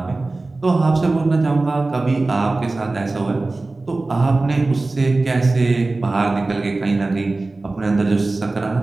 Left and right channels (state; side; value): quieter; left; 3.2 dB